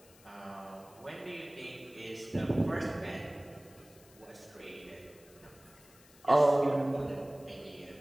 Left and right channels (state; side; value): noise; left; hiss, 25 dB below the sound